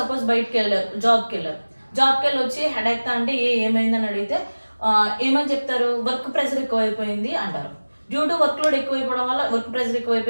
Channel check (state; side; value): inverted; both; correlation -1.00